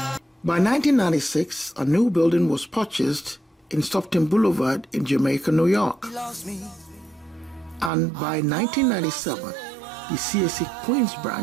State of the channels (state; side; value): drops out; left; at 7.9 s